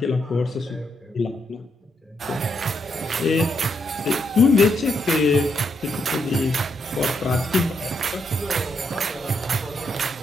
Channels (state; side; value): normal; both; correlation 0.79